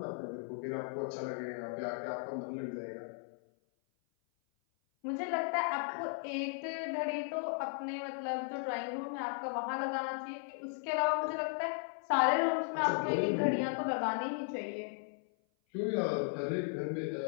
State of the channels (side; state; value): right; silent; 54 dB below the other